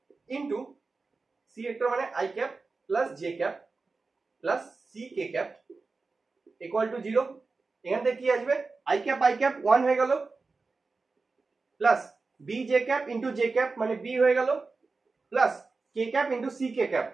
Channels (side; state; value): left; quieter; 4.0 dB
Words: into C vector মানে I cap plus J cap plus C K cap equal to 0। এখান থেকে কি আসবে? আই ক্যাপ 1 হয়ে গেল, plus B J cap into j cap মানে b হয়ে গেল, প্লাস কে ক্যাপ ইনটু সি কে ক্যাপ